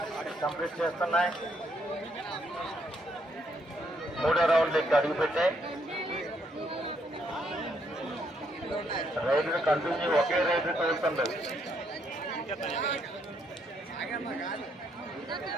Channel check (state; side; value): normal; both; correlation 0.73